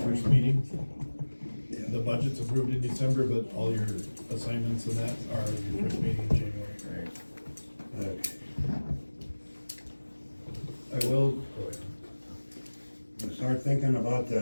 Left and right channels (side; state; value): both; inverted; correlation -1.00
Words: meeting. The budget's approved in December, but all your assignments and that are your first meeting in January. okay. I will, go ahead. We'll start thinking about